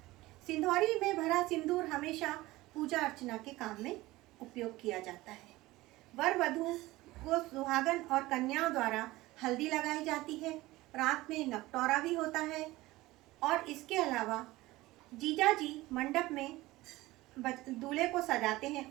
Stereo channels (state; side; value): quieter; left; 18.8 dB